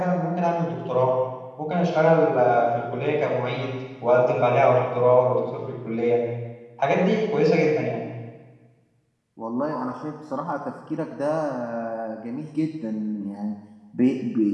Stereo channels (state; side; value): identical; both; correlation 1.00